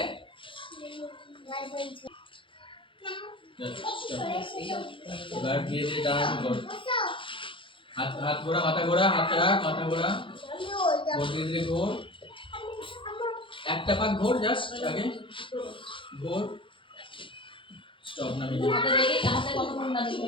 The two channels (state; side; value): late; right; 0.25 ms